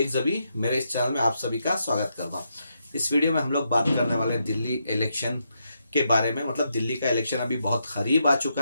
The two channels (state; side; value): inverted; both; correlation -0.81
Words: जबी। मेरे इस चैनल में आप सभी का स्वागत करता हूं। इस वीडियो में हम लोग बात करने वाले हैं दिल्ली इलेक्शन के बारे में। मतलब दिल्ली का इलेक्शन अभी बहुत करीब आ